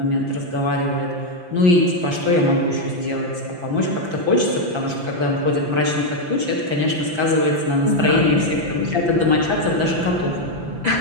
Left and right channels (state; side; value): late; left; 5.9 ms